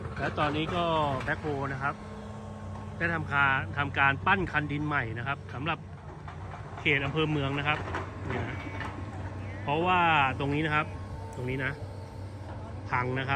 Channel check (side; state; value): both; identical; correlation 1.00